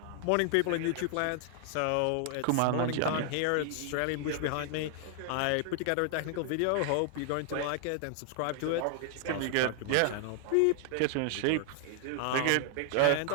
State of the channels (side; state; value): both; different; correlation 0.00